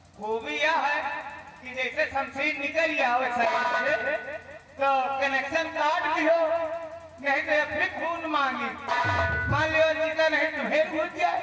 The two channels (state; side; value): identical; both; correlation 1.00